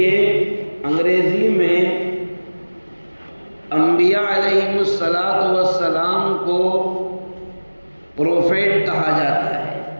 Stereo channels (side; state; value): both; inverted; correlation -1.00